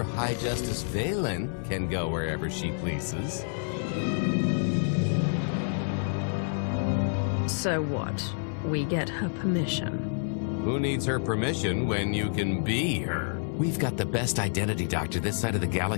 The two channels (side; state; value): right; silent; 57 dB below the other